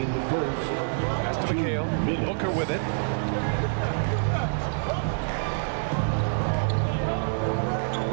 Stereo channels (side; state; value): left; silent; digital silence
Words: the first. Pass to McHale. Booker with it.